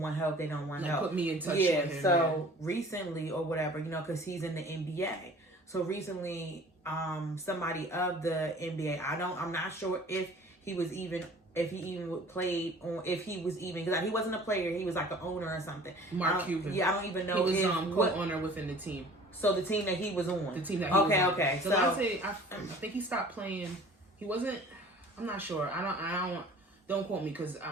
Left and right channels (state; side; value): normal; both; correlation 0.47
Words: help, they don't want help. Put me in touch with him. So recently or whatever, because he's in the NBA. So recently, somebody of the NBA, I'm not sure if he was even played on, if he was even, because he wasn't a player, he was like an owner or something. Mark Cuban. Yeah, I don't even know. He was co-owner within the team. So the team that he was on. The team that he was on. Okay. So I think he stopped playing. He wasn't, I'm not sure. Don't quote me, because